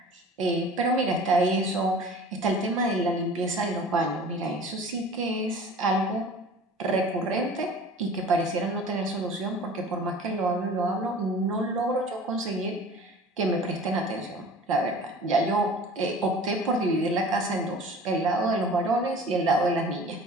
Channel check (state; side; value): normal; both; correlation 0.43